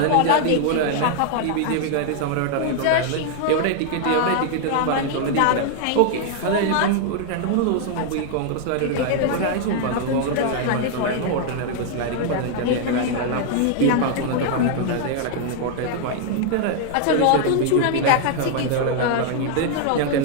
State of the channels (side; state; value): both; different; correlation 0.00